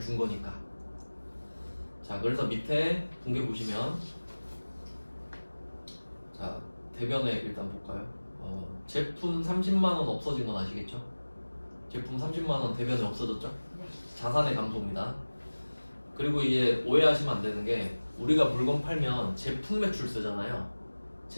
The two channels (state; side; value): inverted; both; correlation -1.00